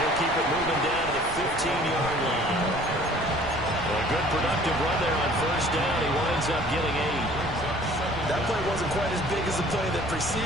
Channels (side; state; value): right; noise; rumble, 12 dB below the sound